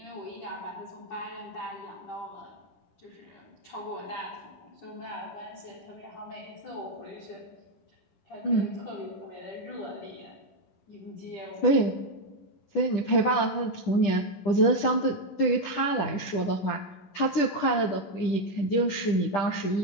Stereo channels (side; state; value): right; late; 10 ms